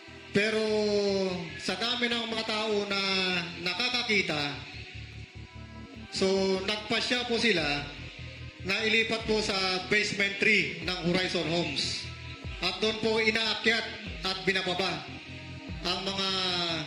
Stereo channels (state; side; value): identical; both; correlation 1.00